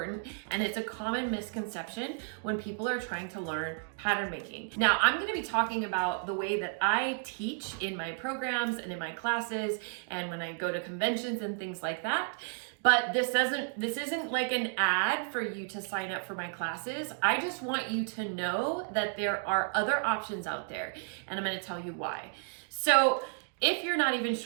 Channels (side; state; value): left; silent; 56 dB below the other